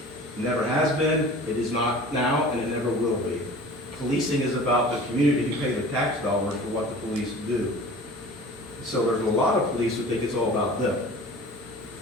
It never has been, it is not now, and it never will be. Policing is about the community who pay the tax dollars for what the police do. So there's a lot of police who think it's all about them.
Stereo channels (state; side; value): normal; both; correlation 0.42